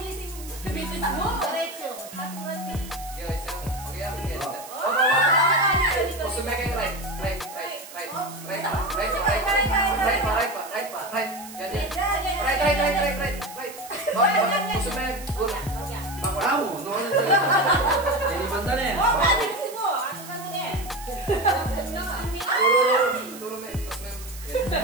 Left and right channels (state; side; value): noise; right; hiss, 16 dB below the sound